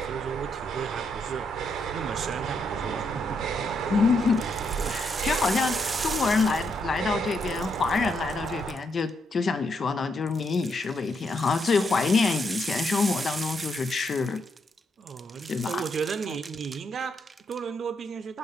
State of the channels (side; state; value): both; normal; correlation 0.78